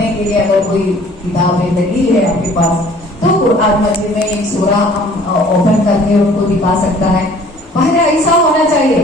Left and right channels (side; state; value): both; normal; correlation 0.53